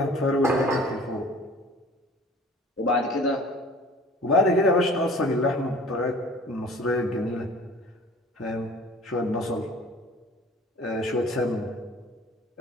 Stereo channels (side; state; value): both; normal; correlation 0.47